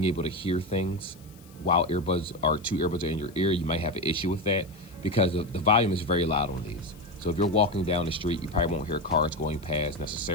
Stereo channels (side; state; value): left; noise; hiss, 26 dB below the sound